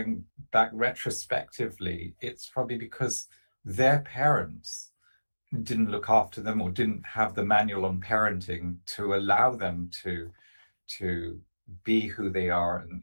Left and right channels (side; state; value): both; inverted; correlation -1.00